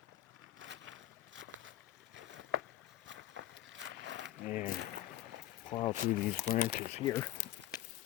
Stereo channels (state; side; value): quieter; right; 14.2 dB